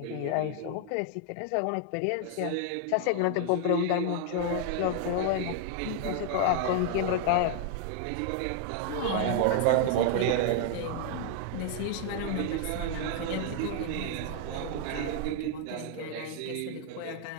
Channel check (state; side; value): different; both; correlation 0.00